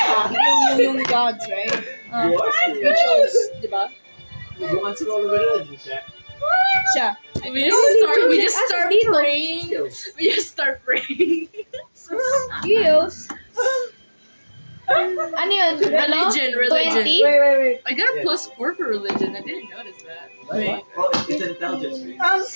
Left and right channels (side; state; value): both; inverted; correlation -1.00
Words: yung gods, right? You are We serious. chose, di ba? Who wants to roll a religion check? Siya. We just start praying. Skills. We just start praying. Skills. Ano yun? Ano? Religion. 20? wait. I got a Yeah. +4 for religion. I didn't notice that. Wait. Oh, it's intelligence. Right?